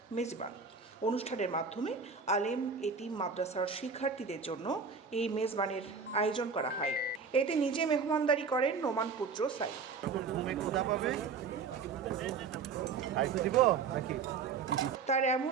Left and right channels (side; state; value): left; quieter; 5.4 dB